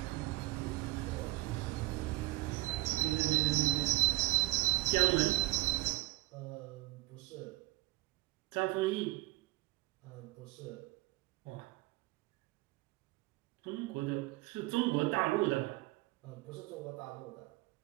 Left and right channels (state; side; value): quieter; left; 20.6 dB